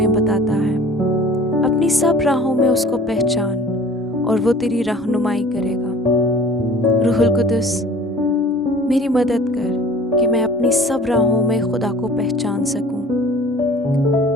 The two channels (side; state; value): both; normal; correlation 0.46